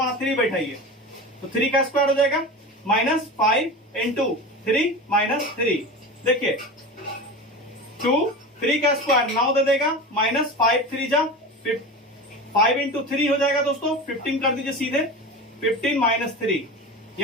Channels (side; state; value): both; normal; correlation 0.29